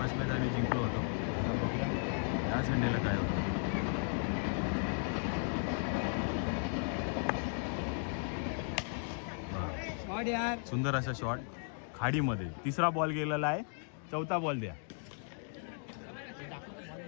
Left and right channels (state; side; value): silent; right; 54 dB below the other